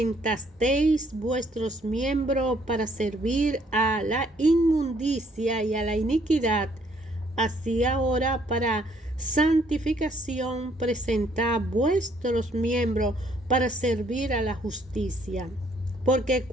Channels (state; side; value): normal; both; correlation 0.66